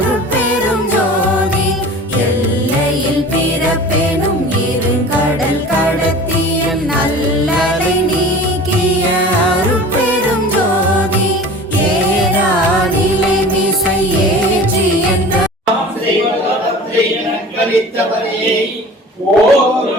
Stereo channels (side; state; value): both; normal; correlation 0.40